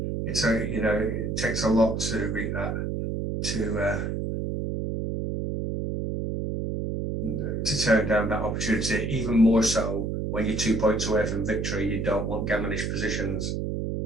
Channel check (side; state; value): right; noise; hum, 2 dB below the sound